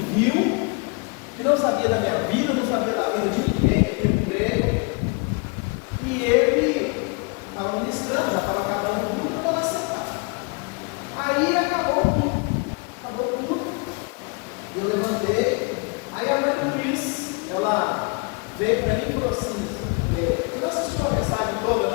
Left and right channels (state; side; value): quieter; right; 31.7 dB